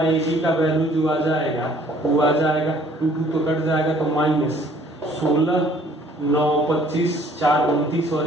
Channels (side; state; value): both; normal; correlation 0.58